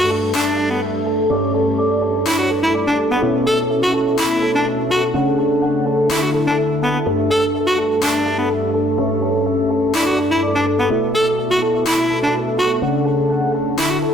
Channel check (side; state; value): both; normal; correlation 0.67